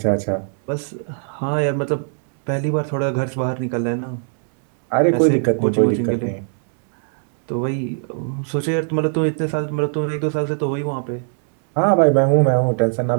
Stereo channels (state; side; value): silent; left; digital silence